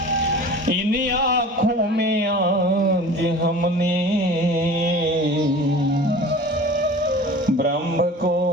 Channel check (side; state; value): both; normal; correlation 0.40